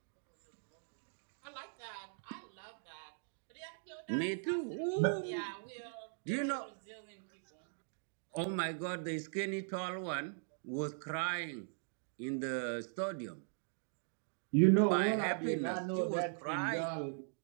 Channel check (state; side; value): silent; left; digital silence